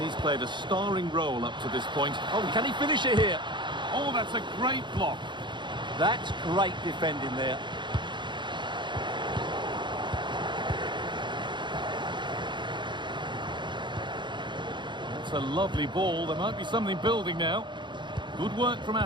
he's played a starring role up to this point. Oh, can he finish it here? Oh, that's a great block. That's great defending there. That's a lovely ball. There might be something building now. Good work from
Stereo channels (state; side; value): late; left; 0.23 ms